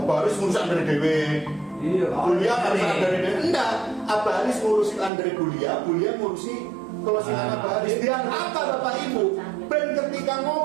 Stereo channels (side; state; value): left; drops out; at 5.1 s